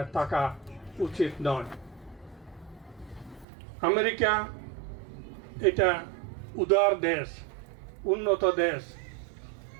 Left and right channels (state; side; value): drops out; left; at 3.5 s